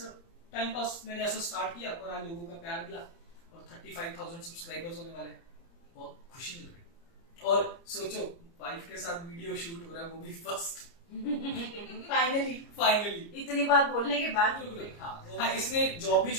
टाइम पास मैंने ऐसा स्टार्ट किया, और आज लोगों का प्यार मिला और 35,000 सब्सक्राइबर्स होने वाले हैं, बहुत खुशी मिल रही। और सोचो वाइफ के साथ वीडियो शूट हो रहा है, वो भी फर्स्ट। फाइनली इतनी बात बोलने के बाद। हाँ, इसने जॉब भी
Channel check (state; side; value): late; right; 30 ms